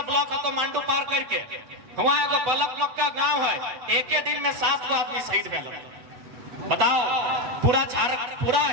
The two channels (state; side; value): late; left; 8.0 ms